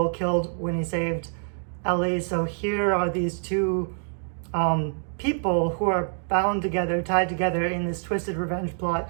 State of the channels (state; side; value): silent; left; digital silence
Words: killed when he saved Ellie. So here are these two people who are bound together, tied together in this twisted revenge plot,